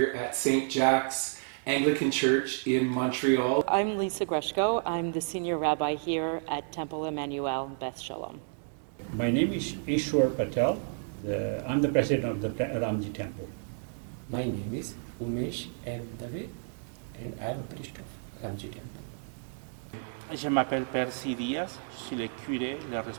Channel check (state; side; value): silent; left; digital silence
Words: at St. Jack's Anglican Church in Montreal. I'm Lisa Greshko. I'm the senior rabbi here at Temple Emmanuel in Beth Shalom. My name is Ishwar Patel. I'm the president of the Ramji Temple. My name is Umesh M. Dave and I'm a priest of Ramji Temple. Je m'appelle Percy Diaz, je suis le curé, le